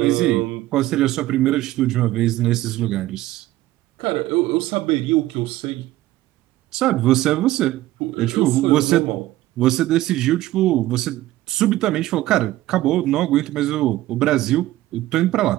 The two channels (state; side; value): quieter; left; 15.8 dB